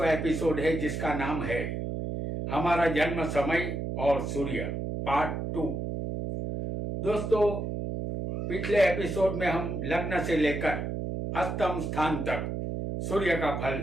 एपिसोड है जिसका नाम है हमारा जन्म समय और सूर्य पार्ट 2। दोस्तों, पिछले एपिसोड में हम लग्न से लेकर अष्टम स्थान तक सूर्य का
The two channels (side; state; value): right; noise; hum, 3 dB below the sound